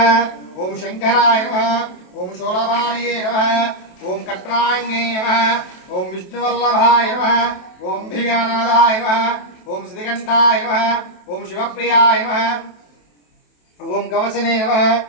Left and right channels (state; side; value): late; right; 27 ms